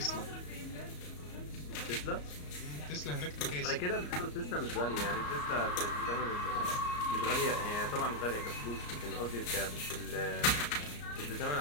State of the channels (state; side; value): late; right; 34 ms